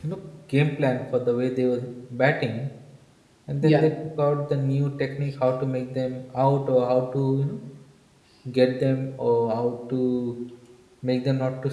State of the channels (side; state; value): both; identical; correlation 1.00